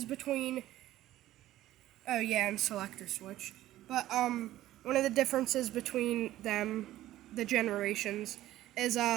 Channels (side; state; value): left; quieter; 14.5 dB